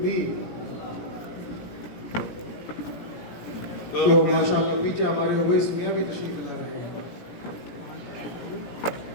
تو ماشاءاللہ پیچھے ہمارے اویس میاں بھی تشریف لا رہے ہیں۔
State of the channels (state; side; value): late; right; 17 ms